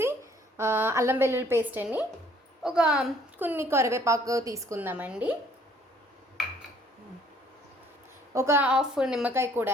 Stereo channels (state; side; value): normal; both; correlation 0.60